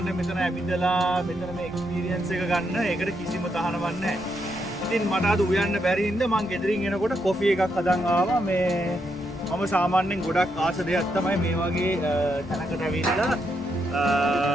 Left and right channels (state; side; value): normal; both; correlation 0.80